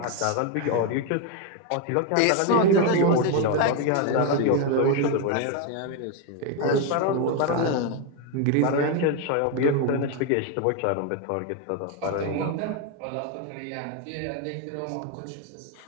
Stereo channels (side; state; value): both; different; correlation 0.02